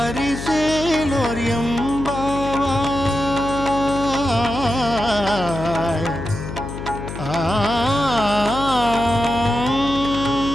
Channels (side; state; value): left; noise; hum, 8 dB below the sound